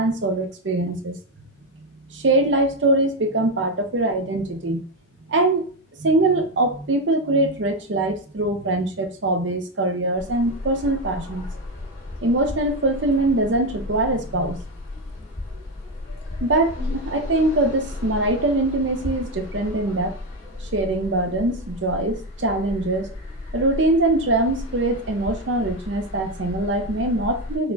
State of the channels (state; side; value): normal; both; correlation 0.10